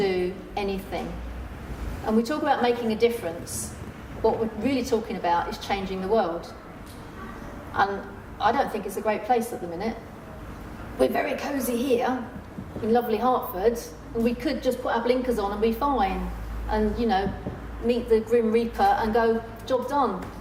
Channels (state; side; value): identical; both; correlation 1.00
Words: anything. And we talk about making a difference. What we're really talking about is changing the world. And I don't think it's a great place at the minute. We're very cosy here in lovely Hertford, and we could just put our blinkers on and be fine and, meet the Grim Reaper and go, job done.